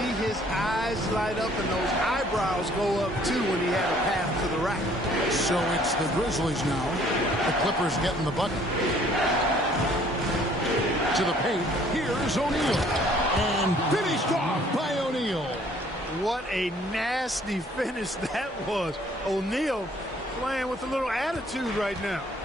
his eyes light up and those eyebrows go up too when he had a path to the rack. So it's the Grizzlies now. The Clippers getting the bucket. To the paint. Here's O'Neal. And finished off by O'Neal. What a nasty finish that was. O'Neal playing with a little attitude right now.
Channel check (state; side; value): normal; both; correlation 0.59